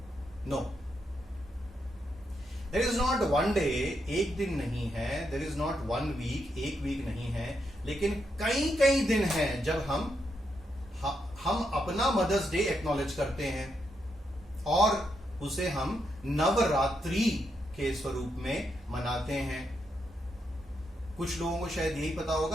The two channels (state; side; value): normal; both; correlation 0.81